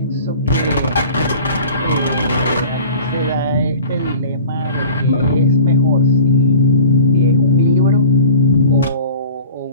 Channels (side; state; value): both; inverted; correlation -0.43